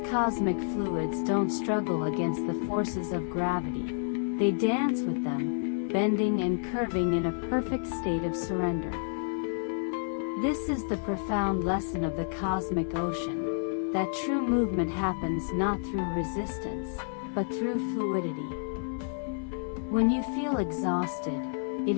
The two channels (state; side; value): silent; right; digital silence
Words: cosmic fluids don't struggle against the forces of gravity, they dance with them, bending and curving in a perfect state of surrender. This is the profound lesson of the cosmic ocean, that true movement happens not through resistance, but through fluidity. When you feel exhausted,